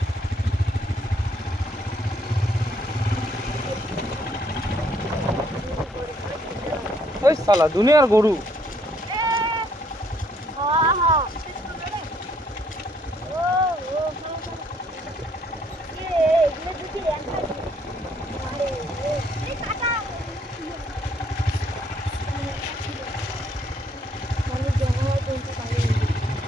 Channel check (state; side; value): normal; both; correlation 0.68